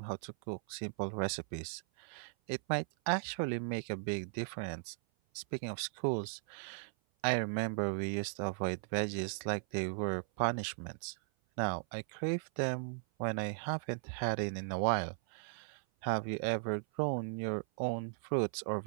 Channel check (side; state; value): left; silent; 53 dB below the other